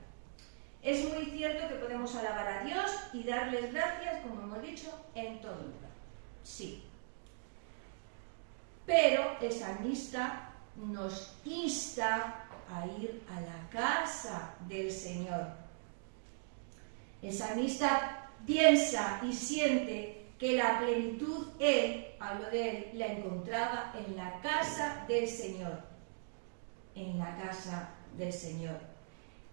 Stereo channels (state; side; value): silent; left; digital silence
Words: Es muy cierto que podemos alabar a Dios y darles gracias, como hemos dicho, en todo lugar. Sí. Pero el salmista nos insta a ir a la casa del Señor. El salmista piensa y siente que la plenitud hablo de él, la encontraba en la casa del Señor. En la casa del Señor.